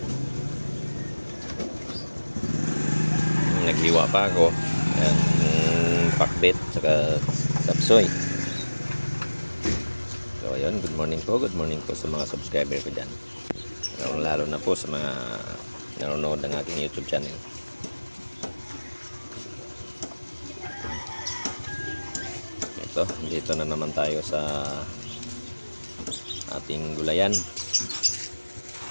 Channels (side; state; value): both; inverted; correlation -1.00